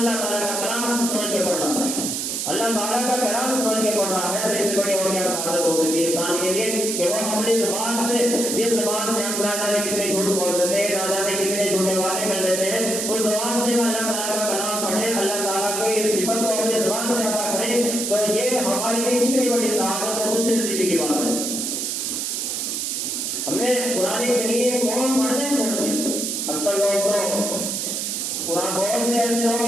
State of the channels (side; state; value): right; noise; hiss, 2 dB below the sound